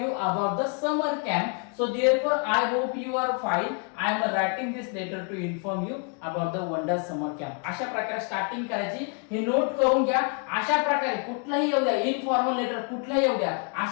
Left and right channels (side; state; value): right; quieter; 38.0 dB